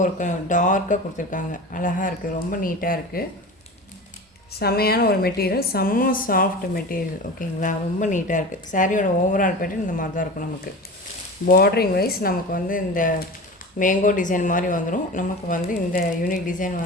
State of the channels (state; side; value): normal; both; correlation 0.32